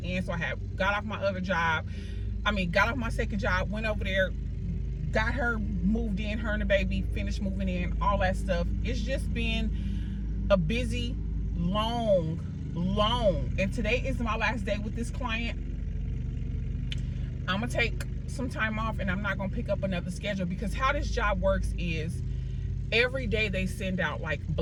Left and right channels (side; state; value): both; identical; correlation 1.00